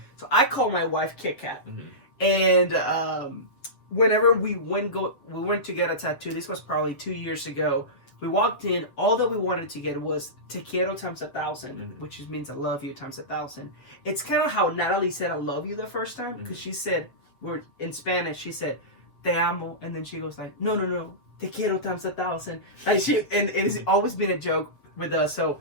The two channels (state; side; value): late; right; 7.6 ms